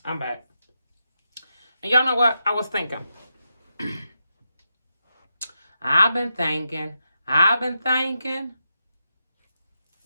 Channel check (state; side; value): inverted; both; correlation -0.86